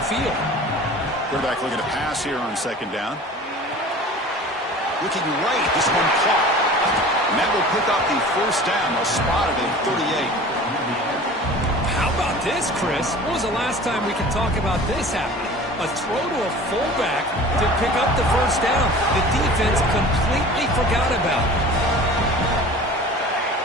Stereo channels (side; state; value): both; normal; correlation 0.41